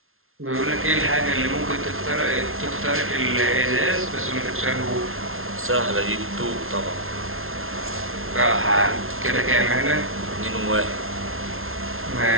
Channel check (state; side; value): late; left; 0.61 ms